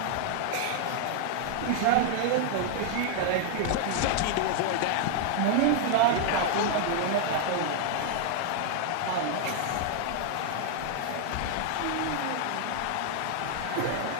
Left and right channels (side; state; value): both; different; correlation 0.00